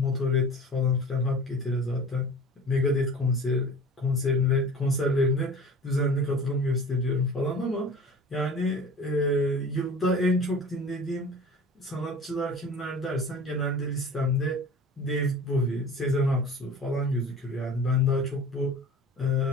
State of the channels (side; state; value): both; normal; correlation 0.40